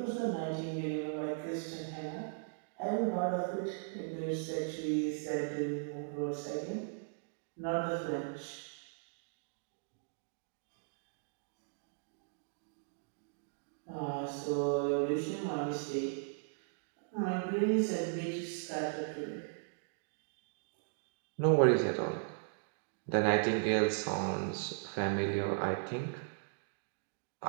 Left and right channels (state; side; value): silent; left; digital silence